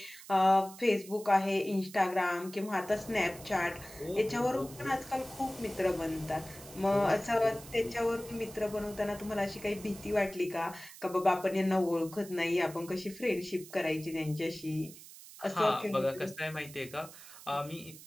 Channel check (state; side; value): noise; right; hiss, 17 dB below the sound